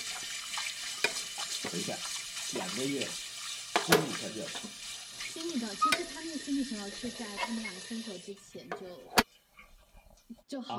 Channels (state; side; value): identical; both; correlation 1.00